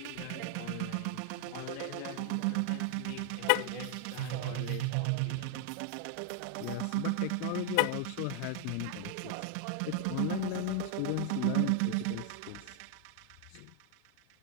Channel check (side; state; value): both; different; correlation 0.00